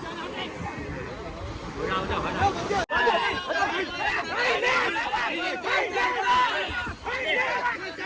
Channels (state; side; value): identical; both; correlation 1.00